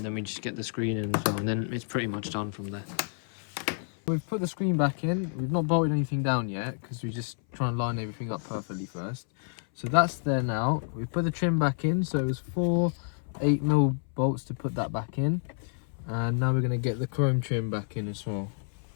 then we just get the screen in as well, and then it's pretty much done from there. We've put the screen back in. We've not bolted anything down yet because we're just trying to line everything up perfectly first. So that's there now. We've put the trim back in, so it was 4 8mm bolts to put that back in, and now we're going to get the chrome trim back in as well.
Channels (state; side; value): silent; right; 58 dB below the other